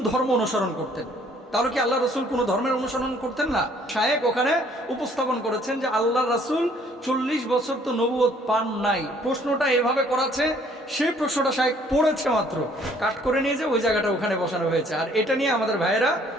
ধর্ম অনুসরণ করতেন? তাহলে কি আল্লাহ রসুল কোনো ধর্মের অনুসরণ করতেন না? শায়েখ ওখানে উপস্থাপন করেছেন যে আল্লাহ রাসূল 40 বছর তো নবুয়ত পান নাই। প্রশ্নটা এভাবে করাছে, সেই প্রশ্নটা শায়েখ পড়েছে মাত্র, কাট করে নিয়ে যে ওই জায়গাটা ওখানে বসানো হয়েছে, আর এটা নিয়ে আমাদের ভাইয়েরা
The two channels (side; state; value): both; normal; correlation 0.60